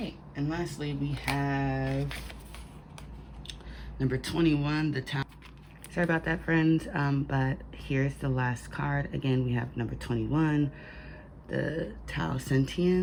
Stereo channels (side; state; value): both; identical; correlation 1.00